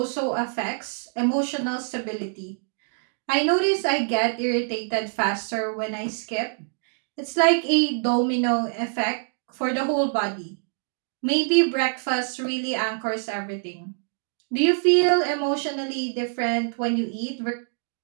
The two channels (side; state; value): left; silent; digital silence